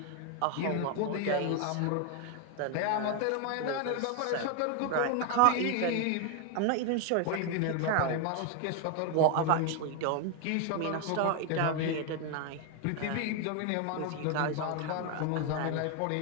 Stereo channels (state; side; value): different; both; correlation 0.01